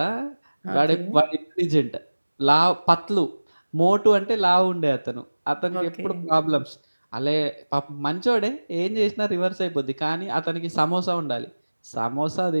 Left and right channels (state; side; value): inverted; both; correlation -1.00